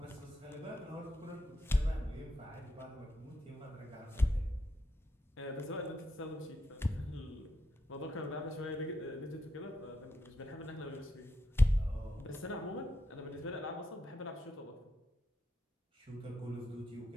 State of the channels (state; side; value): normal; both; correlation 0.84